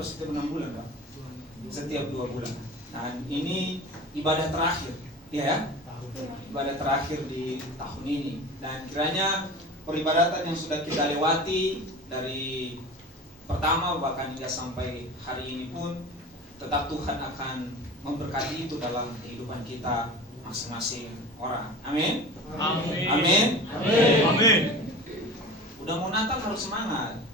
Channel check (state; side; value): normal; both; correlation 0.35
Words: setiap 6 bulan, Pak? Setiap 2 bulan. Nah, ini ibadah terakhir, ya, ibadah terakhir di tahun ini. Dan kiranya peribadatan yang sudah kita lewati dari pertama bahkan hingga sampai hari ini pun tetap Tuhan akan memberkati itu dalam kehidupan kita masing-masing orang. Amin. Amin. Amin. Amin. Amin. Udah mau Natal harus semangat.